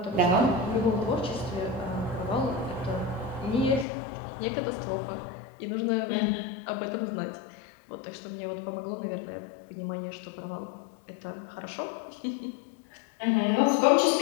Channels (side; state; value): right; drops out; at 3.9 s